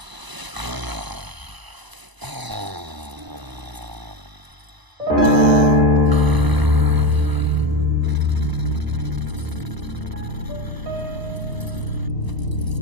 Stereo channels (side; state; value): left; late; 1.0 ms